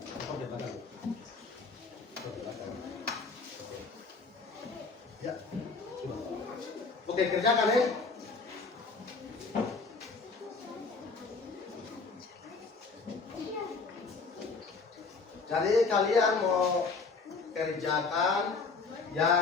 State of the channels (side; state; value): right; quieter; 4.3 dB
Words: Ya. Oke, kerjakan ya. Jadi kalian mau kerjakan